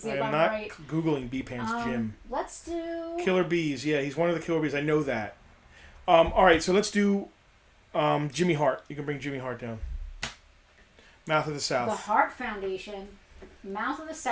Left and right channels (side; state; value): both; identical; correlation 1.00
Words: see if I'm not right. Googling B Pants Jim. Let's do... Killer Bees. Yeah, he's one of the Killer Bees. I know that. All right, so let's do Jimmy Hart. You can bring Jimmy Hart down. Mouth of the South. The Hart Foundation. Mouth of the